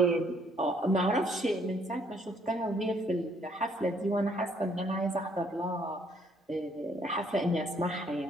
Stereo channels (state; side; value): normal; both; correlation 0.65